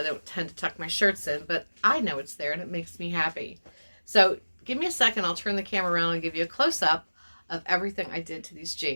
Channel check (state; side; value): inverted; both; correlation -1.00